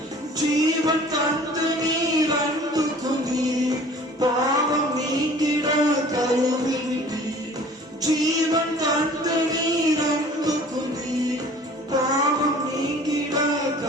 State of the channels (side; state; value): both; normal; correlation 0.48